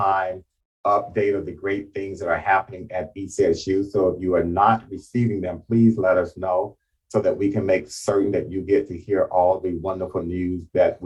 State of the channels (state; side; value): identical; both; correlation 1.00